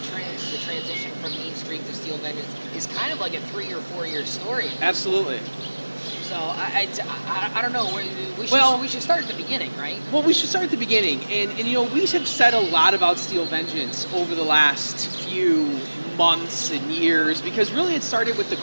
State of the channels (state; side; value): inverted; both; correlation -1.00